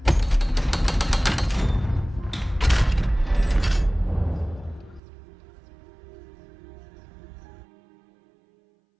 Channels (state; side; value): drops out; left; at 5.0 s